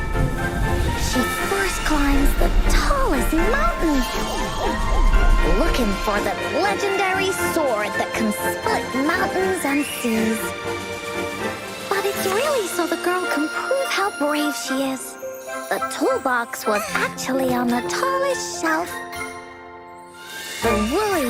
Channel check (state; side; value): identical; both; correlation 1.00